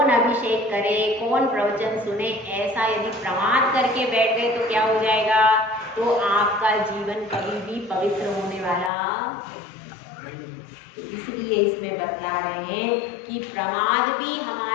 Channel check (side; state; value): right; drops out; at 8.9 s